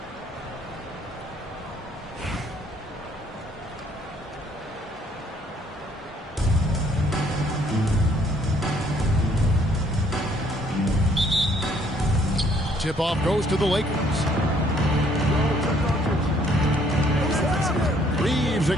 Tip-off goes to the Lakers. Reeves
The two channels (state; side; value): normal; both; correlation 0.64